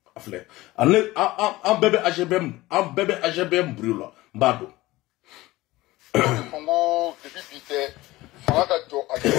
afle an bebe AGBM brûla mbado Congo depuis bité fanga ka to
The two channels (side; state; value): right; quieter; 18.7 dB